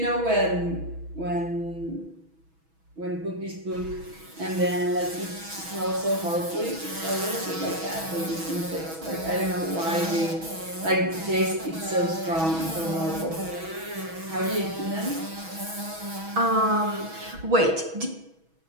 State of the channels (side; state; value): left; late; 6.2 ms